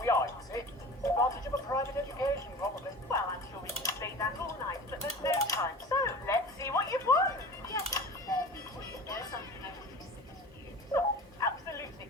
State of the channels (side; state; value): both; normal; correlation 0.37